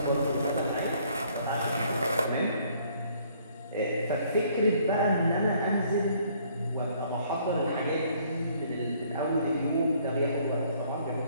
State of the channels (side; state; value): both; inverted; correlation -0.63